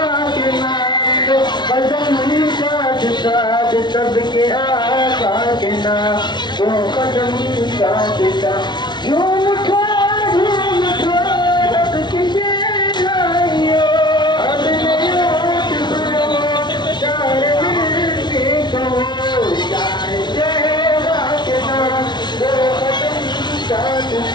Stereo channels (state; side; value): late; right; 0.21 ms